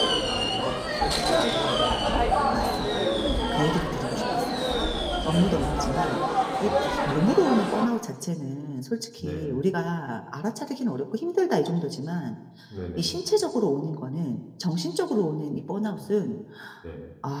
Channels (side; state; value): both; identical; correlation 1.00